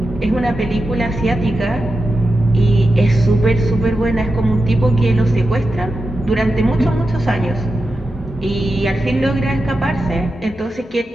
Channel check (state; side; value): normal; both; correlation 0.91